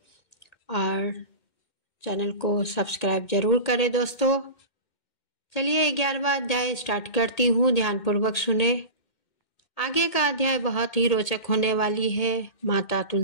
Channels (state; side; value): late; right; 2.1 ms